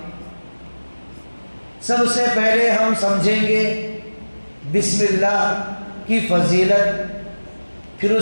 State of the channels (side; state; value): both; inverted; correlation -1.00